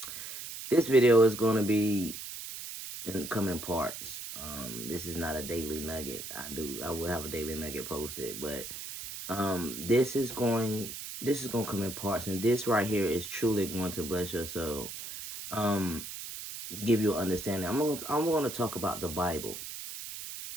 This video is going to be in coming parts. This is not a daily nugget. I will have a daily nugget posted, but this is going to come in parts, and this right here is truly going to bless your soul. Um, give you an understanding. I'm going to talk about the Bible,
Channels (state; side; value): noise; right; hiss, 9 dB below the sound